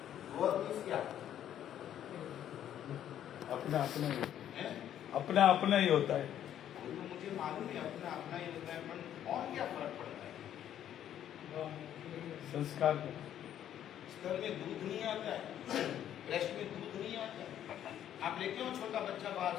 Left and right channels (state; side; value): quieter; right; 10.7 dB